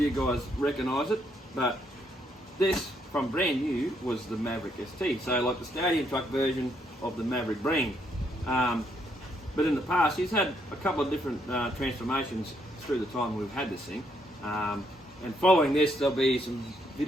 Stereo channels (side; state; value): both; normal; correlation 0.74